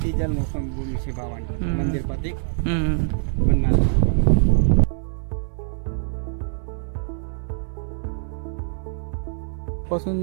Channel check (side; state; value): left; silent; 58 dB below the other